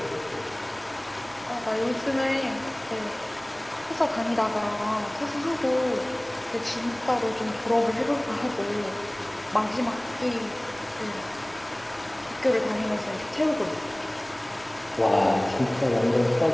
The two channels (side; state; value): right; noise; rumble, 26 dB below the sound